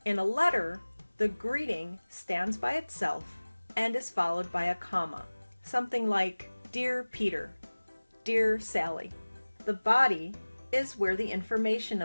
In a letter, the greeting stands by itself and is followed by a comma. Something like, Dear Peter, Dear Sally. The body is where the information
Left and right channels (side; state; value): both; inverted; correlation -1.00